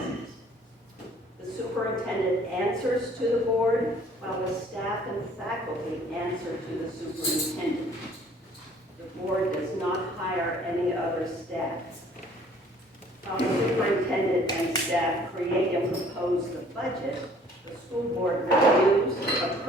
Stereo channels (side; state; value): both; normal; correlation 0.56